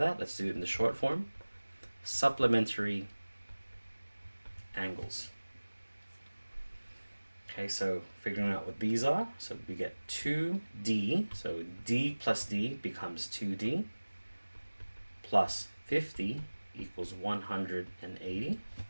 let's do it in the short form. Supplementary angles. Okay, so figuring out what these are. So we get 2D. So D plus D becomes 2D. Plus 50 equals 180.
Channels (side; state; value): both; inverted; correlation -1.00